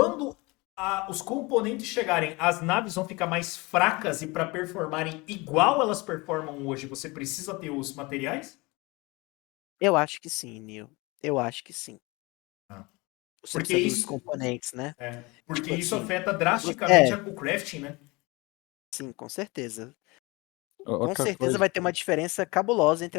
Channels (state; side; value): quieter; right; 24.8 dB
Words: os componentes chegarem, as naves vão ficar mais fracas e para performarem igual elas performam hoje, você precisa ter os materiais? Eu acho que sim, Neil. Eu acho que sim. Ah. Você Porque precisa dos isso, componentes, né? porque Tipo isso assim, afeta drasticamente é, o crafting, né? sim, com certeza. Com Outra certeza coisa, vai ter uma diferença cabulosa entre